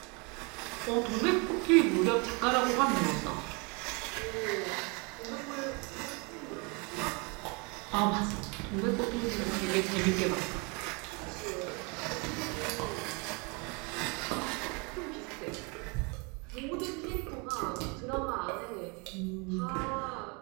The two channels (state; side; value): quieter; left; 31.0 dB